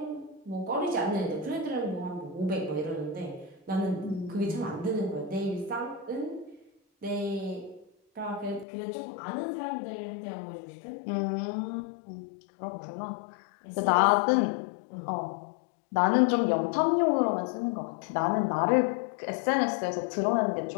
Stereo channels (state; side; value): drops out; right; at 8.7 s